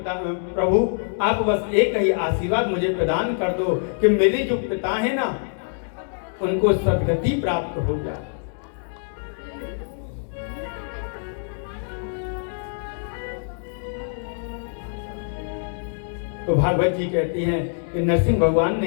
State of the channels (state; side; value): silent; right; digital silence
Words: आप बस एक ही आशीर्वाद मुझे प्रदान कर दो कि मेरे जो पिता है ना उनको सद्गति प्राप्त हो जाए। तो भागवत जी कहती हैं कि नरसिंह भगवान